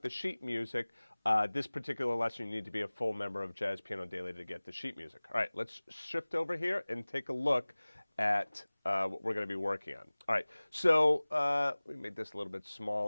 the sheet music, this particular lesson, you need to be a full member of Jazz Piano Daily to get the sheet music. All right, let's shift over here and take a look at what we're going to be working on. All right, so we made this a little bit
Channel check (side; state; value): both; inverted; correlation -1.00